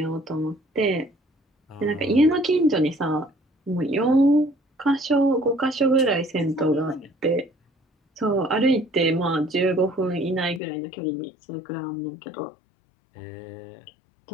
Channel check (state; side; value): drops out; right; at 10.6 s